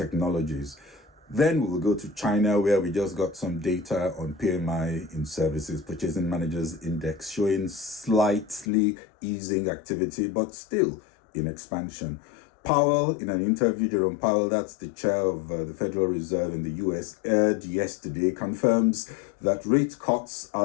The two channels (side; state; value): right; drops out; at 8.7 s